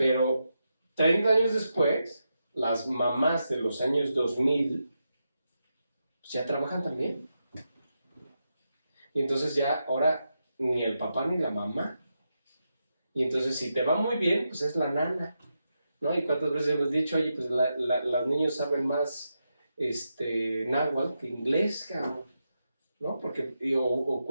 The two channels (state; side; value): inverted; both; correlation -0.86